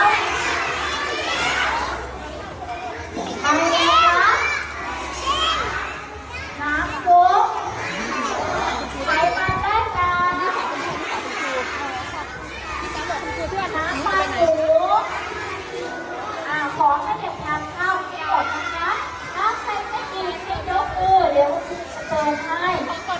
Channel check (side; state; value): both; identical; correlation 1.00